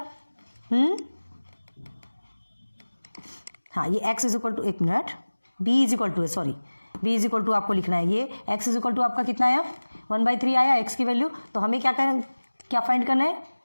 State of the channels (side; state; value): both; inverted; correlation -1.00